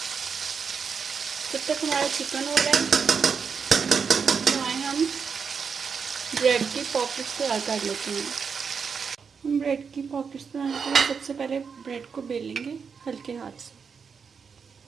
जब तक हमारा चिकन हो रहा है हम ब्रेड की पॉकेट्स तैयार कर लेते हैं। हम ब्रेड की पॉकेट्स बनाने के लिए सबसे पहले ब्रेड को बेलेंगे हल्के हाथ से,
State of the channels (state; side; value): quieter; left; 6.0 dB